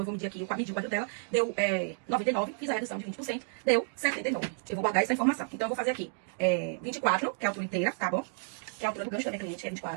eu vou medir aqui, medir o quadril dela, deu 99, fiz a redução de 20%, deu 79. Eu vou guardar essa informação. Então eu vou fazer aqui 24, que é a altura inteira, tá bom? Que é a altura do gancho da minha cliente, é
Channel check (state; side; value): silent; left; digital silence